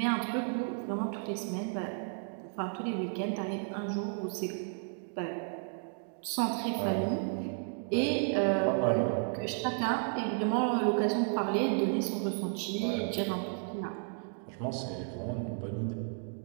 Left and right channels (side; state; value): left; silent; 56 dB below the other